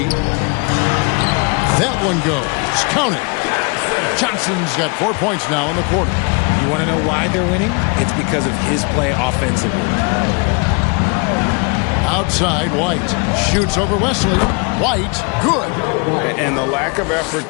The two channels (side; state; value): right; quieter; 32.9 dB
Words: That one goes. Count it. Johnson's got 4 points now in the quarter. You want to know why they're winning? It's because of his play offensively. Outside, White shoots over Wesley. White, good. And the lack of effort